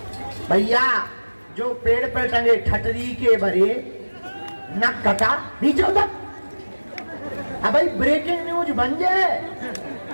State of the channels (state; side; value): inverted; both; correlation -1.00